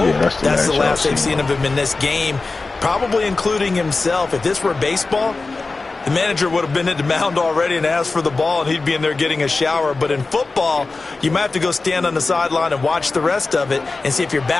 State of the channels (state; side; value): quieter; right; 3.7 dB